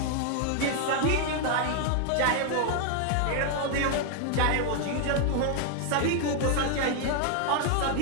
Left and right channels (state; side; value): different; both; correlation 0.00